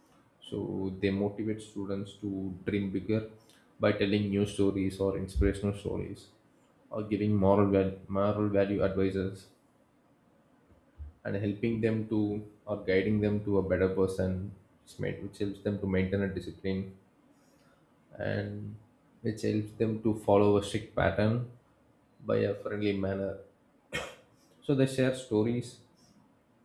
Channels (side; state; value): both; identical; correlation 1.00